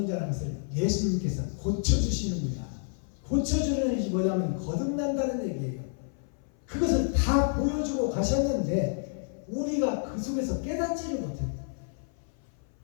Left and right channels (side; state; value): right; silent; 57 dB below the other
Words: 자라는 것을 예수님께서 고쳐주시는 거야. 고쳐주는 것이 뭐냐면 거듭난다는 얘기예요. 그것을 다 보여주고 가셨는데 우리가 그 속에서 깨닫지를 못해요.